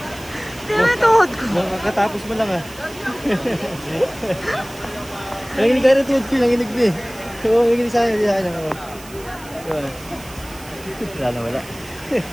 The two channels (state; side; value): noise; right; hiss, 19 dB below the sound